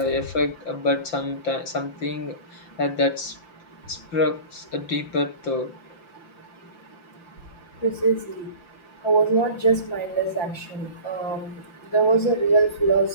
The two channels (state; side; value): late; right; 5.8 ms